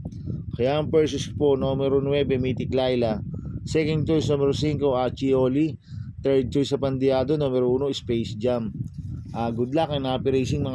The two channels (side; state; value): both; identical; correlation 1.00